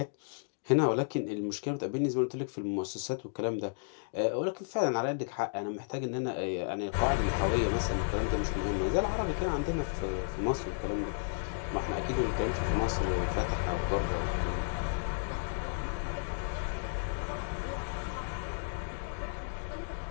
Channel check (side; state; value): right; silent; digital silence